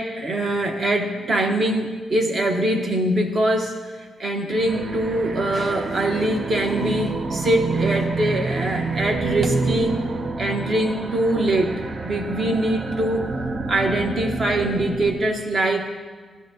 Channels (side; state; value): both; normal; correlation 0.77